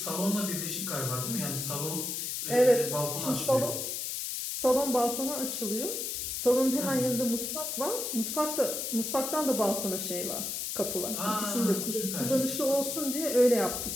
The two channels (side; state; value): left; noise; hiss, 3 dB below the sound